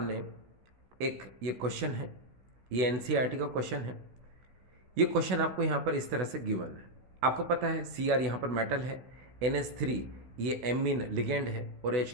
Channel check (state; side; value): late; left; 16 ms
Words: एक ये क्वेश्चन है, ये एनसीईआरटी का क्वेश्चन है। ये क्वेश्चन आपको यहाँ पर इस तरह से गिवन है। आपको पता है Cr यहाँ पर मेटल है, NH3 ये एमीन लिगेंड है और